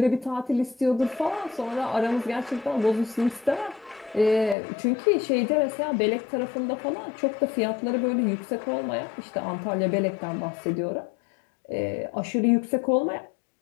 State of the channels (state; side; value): drops out; right; at 4.5 s